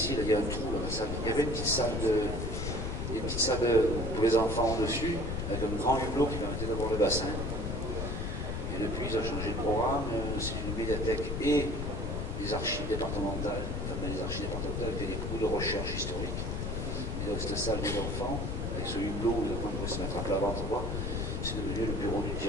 là, il y a un trou dans la salle. Il y avait une petite salle pour les enfants au-dessus, avec un grand hublot qui permettait d'avoir le bassin. Et depuis, ils ont changé de programme. C'est une médiathèque et des archives départementales. Enfin, les archives départementales étaient des cours de recherche historique. Et donc, cette salle des enfants, avec ce hublot où les enfants pouvaient se mettre à plat ventre droit, c'est devenu le bureau du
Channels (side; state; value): left; noise; rumble, 2 dB below the sound